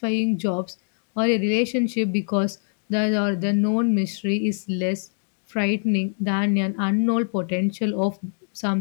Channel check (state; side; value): silent; right; digital silence